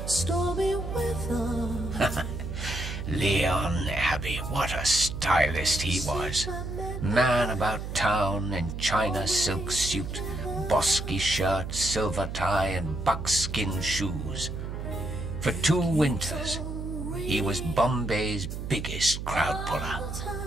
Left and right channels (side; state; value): right; noise; hum, 6 dB below the sound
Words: stormy weather. Leon Abbey, what a stylist he was. Man about town in China silk suit, bosky shirt, silver tie and buckskin shoes. For 2 winters, he was Bombay's biggest crowd puller.